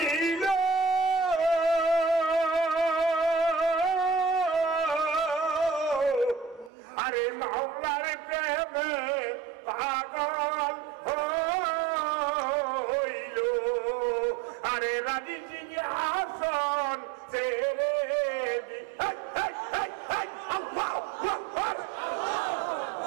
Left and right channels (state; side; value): drops out; left; at 6.7 s